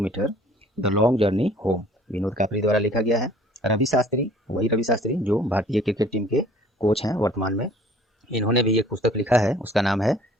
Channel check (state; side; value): normal; both; correlation 0.54